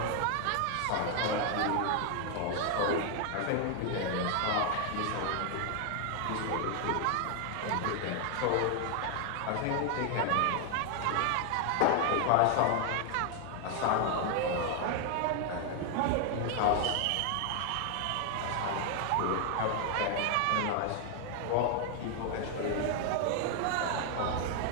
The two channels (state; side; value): different; both; correlation 0.00